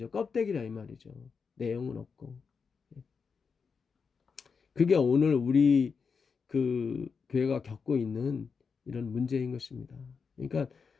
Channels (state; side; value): quieter; right; 5.6 dB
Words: 껍데기라 이 말이죠. 내용은 없고. 그게 오늘 우리 그 교회가 겪고 있는 이런 문제인 것입니다. 그러니까